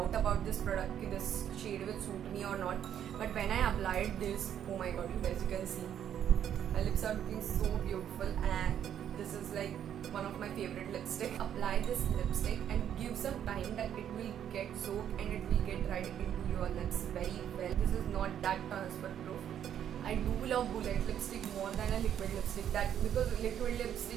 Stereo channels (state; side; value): quieter; left; 9.8 dB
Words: about this product, कि this shade will suit me or not, but when I applied this, oh my god, you guys, you can see my lips are looking so beautiful, and this is like one of my favorite lipstick. Apply this lipstick and give some time that it will get soaked and it will get right into your lips very well. This is not that transfer proof. I do love bullet lipstick more than a liquid lipstick, that because liquid